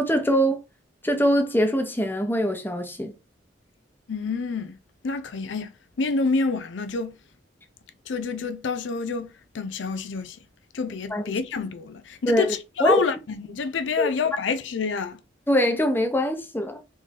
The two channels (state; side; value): normal; both; correlation 0.54